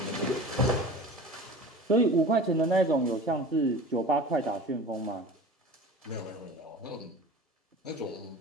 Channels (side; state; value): both; normal; correlation 0.37